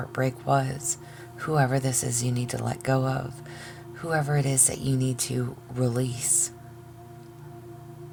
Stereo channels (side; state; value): both; identical; correlation 1.00